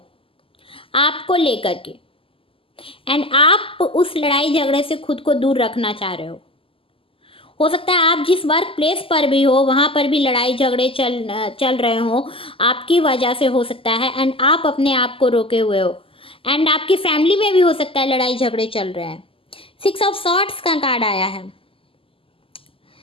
आपको लेकर के, एंड आप उस लड़ाई झगड़े से खुद को दूर रखना चाह रहे हो। हो सकता है आप जिस वर्क प्लेस पर भी हो वहाँ पर भी लड़ाई झगड़े चल रहे हो आपकी वजह से, हो सकता है, एंड आप अपने आप को रोके हुए हो। एंड आपकी फैमिली में भी हो सकता है लड़ाई झगड़े चल रहे हैं। 6 ऑफ सॉर्ड्स का कार्ड आया है।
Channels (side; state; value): right; late; 0.26 ms